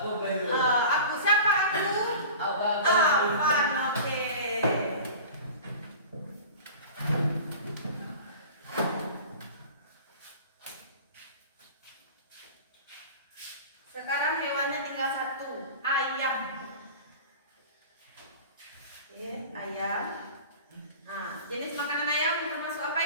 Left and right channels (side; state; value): both; inverted; correlation -0.38